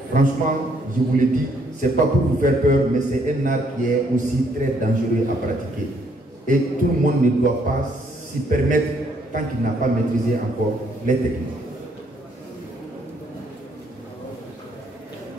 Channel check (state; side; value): normal; both; correlation 0.69